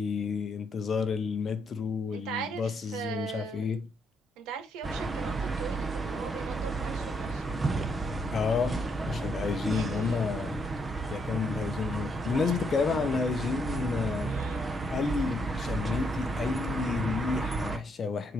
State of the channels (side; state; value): both; normal; correlation 0.75